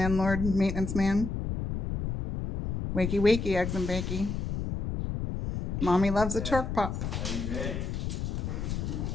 maintenance man. Wakey wakey, eggs and bakey. Mommy loves a torque pop.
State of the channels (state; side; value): noise; left; rumble, 3 dB below the sound